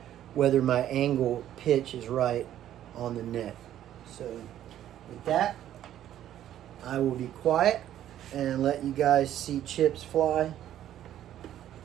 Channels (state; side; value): quieter; left; 11.7 dB